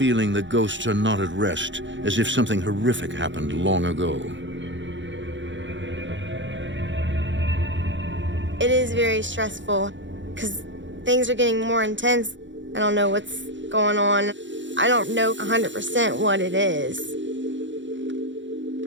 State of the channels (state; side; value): late; left; 0.54 ms